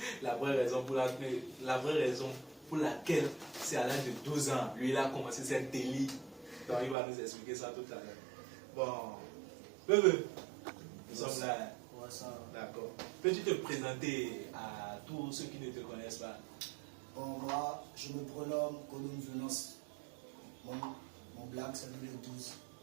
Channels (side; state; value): left; drops out; at 7.0 s